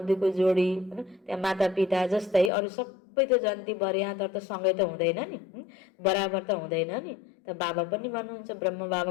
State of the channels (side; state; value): right; drops out; at 2.5 s